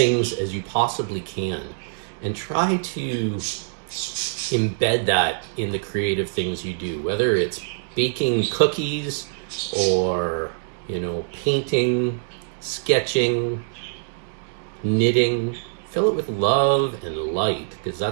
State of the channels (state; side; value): silent; left; digital silence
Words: as you possibly can. And try to embed that in the creative things you do, whether it's baking cookies or, painting, sketching, knitting. Fill it with love and light, because